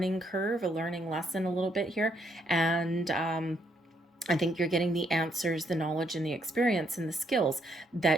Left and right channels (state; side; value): normal; both; correlation 0.73